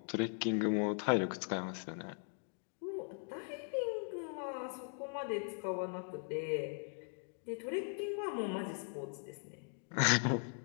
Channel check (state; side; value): silent; right; 51 dB below the other